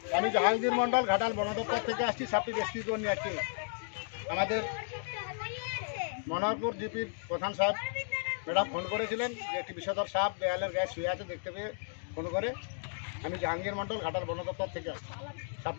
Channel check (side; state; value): right; silent; digital silence